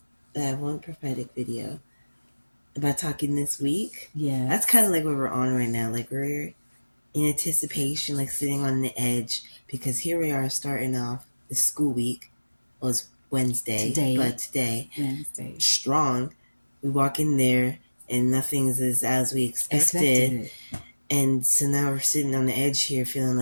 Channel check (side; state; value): both; inverted; correlation -1.00